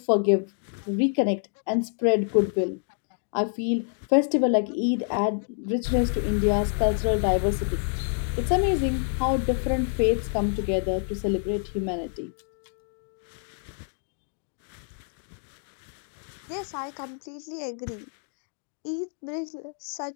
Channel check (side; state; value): right; silent; 59 dB below the other